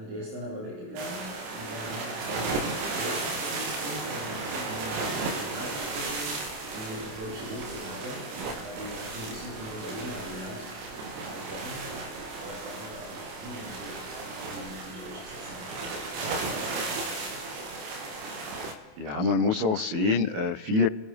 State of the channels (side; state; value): left; late; 28 ms